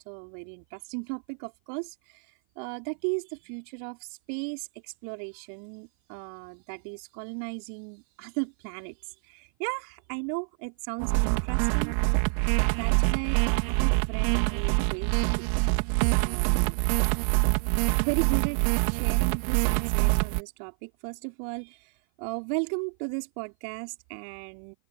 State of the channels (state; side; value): silent; left; 56 dB below the other